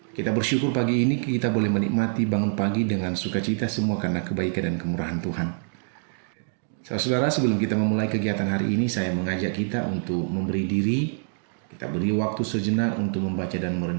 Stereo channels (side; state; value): left; silent; digital silence